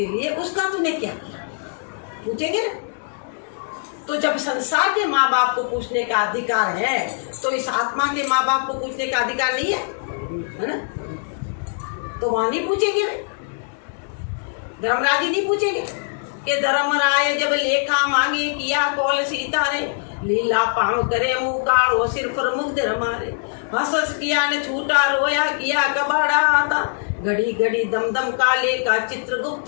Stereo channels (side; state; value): right; silent; digital silence